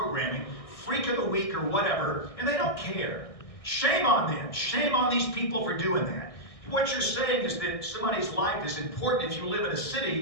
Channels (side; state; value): right; late; 1.6 ms